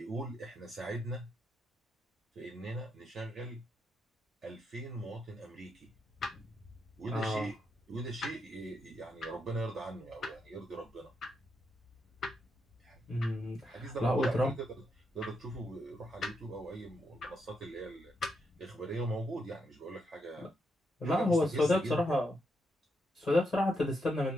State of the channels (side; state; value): both; normal; correlation 0.81